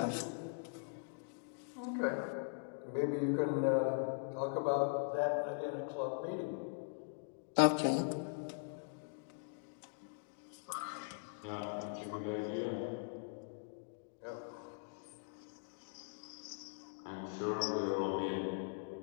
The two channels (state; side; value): silent; right; digital silence